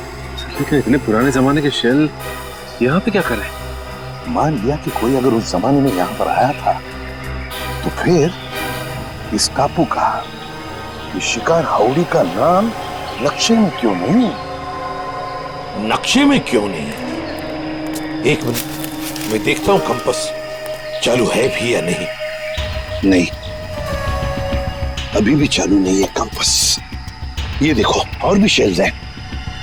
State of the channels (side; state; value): both; identical; correlation 1.00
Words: लेकिन इतने पुराने जमाने के शेल यहाँ पे क्या कर रहे हैं? मान लिया कि कोई अगर उस जमाने में यहाँ पर आया था, तो फिर इस टापू का, इस शिकार हाउड़ी का नाम नक्शे में क्यों नहीं? नक्शे में क्यों नहीं? एक मिनट, मैं देखता हूं कंपास चालू है भी या नहीं। नहीं, अभी भी चालू नहीं है कंपास। ये देखो और भी शेल्स हैं।